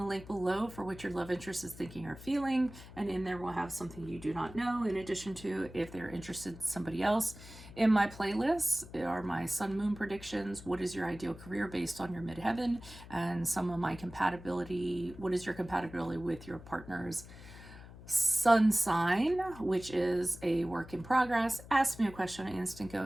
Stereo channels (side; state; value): left; noise; hum, 17 dB below the sound